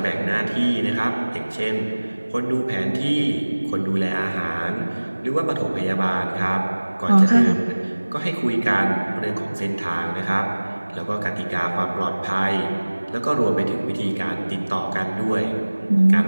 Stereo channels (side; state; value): both; inverted; correlation -1.00